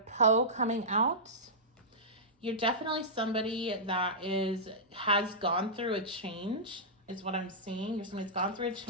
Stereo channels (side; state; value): both; normal; correlation -0.14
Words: Poe coming out. You're definitely somebody that has gone through a change, is what I'm seeing. You're somebody that's gone through a